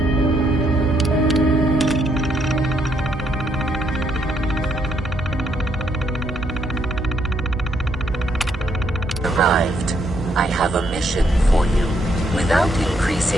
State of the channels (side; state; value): both; normal; correlation 0.74